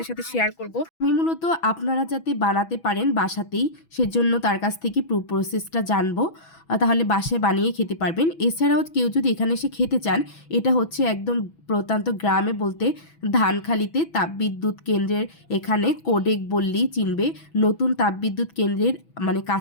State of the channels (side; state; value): right; late; 6.1 ms